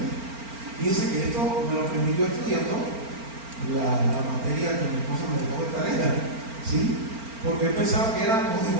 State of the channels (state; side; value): late; left; 4.4 ms